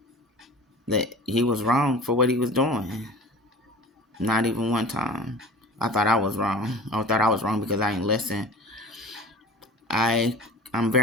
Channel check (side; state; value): both; normal; correlation 0.39